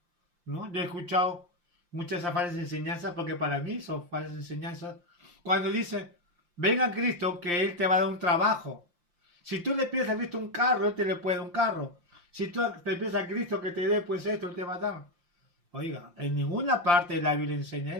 ¿no? Yo he escuchado muchas falsas enseñanzas porque para mí son falsas enseñanzas. Cuando dice, venga a Cristo que Él te va a dar un trabajo. Si tú le pides a Cristo un carro, Él te le puede dar un carro. Si tú le pides a Cristo que te dé pues esto, Él te va a dar. Oiga, en ninguna parte de la Biblia enseña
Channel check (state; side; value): late; left; 5.7 ms